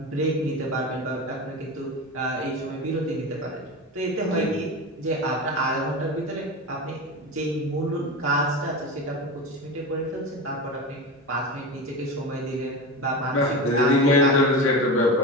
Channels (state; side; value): normal; both; correlation 0.25